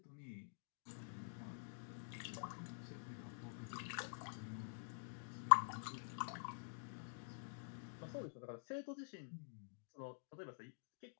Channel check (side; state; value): right; silent; digital silence